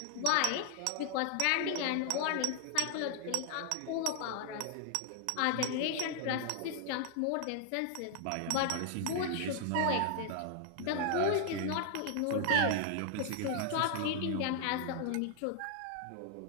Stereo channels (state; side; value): different; both; correlation 0.00